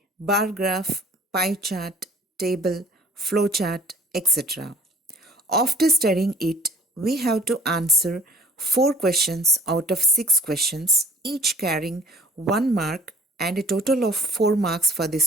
bar graph, pie chart, table, flow chart, etc. After studying it, we have to answer 4 questions out of 6 questions, each carrying 1 mark and a total of 4 marks for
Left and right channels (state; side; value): normal; both; correlation 0.53